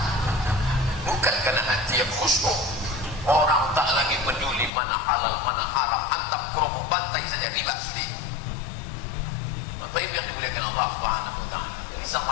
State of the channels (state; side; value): drops out; right; at 4.7 s